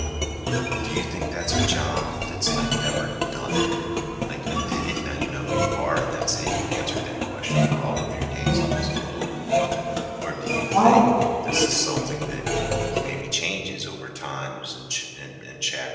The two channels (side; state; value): both; identical; correlation 1.00